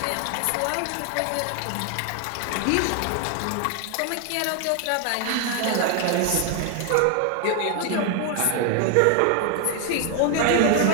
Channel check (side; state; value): both; different; correlation 0.01